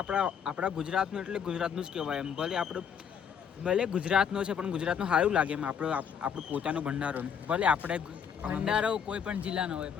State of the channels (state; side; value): quieter; right; 7.6 dB